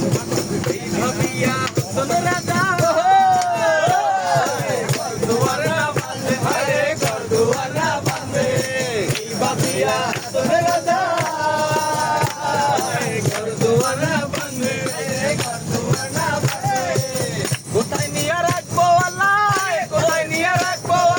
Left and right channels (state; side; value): identical; both; correlation 1.00